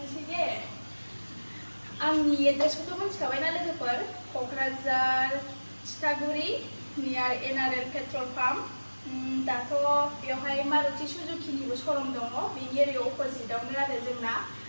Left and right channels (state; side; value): inverted; both; correlation -1.00